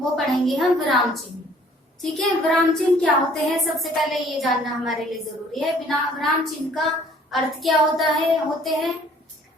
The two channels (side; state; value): both; normal; correlation 0.57